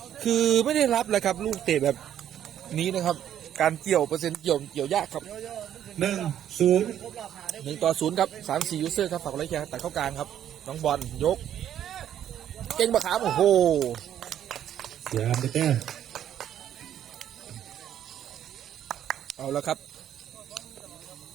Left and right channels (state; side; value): quieter; left; 10.4 dB